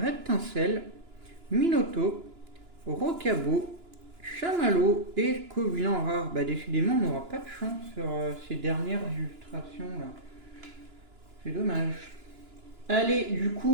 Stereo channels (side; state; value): left; late; 2.9 ms